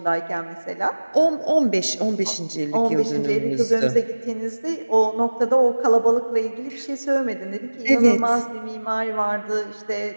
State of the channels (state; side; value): inverted; both; correlation -1.00